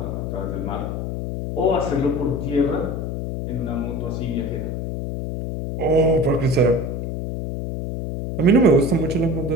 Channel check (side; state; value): left; noise; hum, 4 dB below the sound